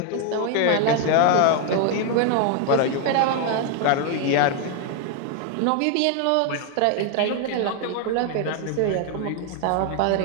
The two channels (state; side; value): different; both; correlation 0.01